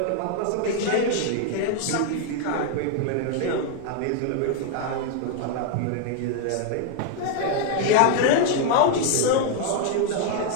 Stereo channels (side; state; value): both; different; correlation 0.00